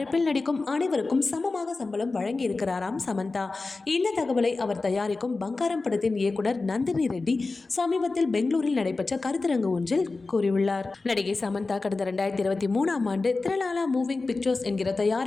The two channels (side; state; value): right; quieter; 3.7 dB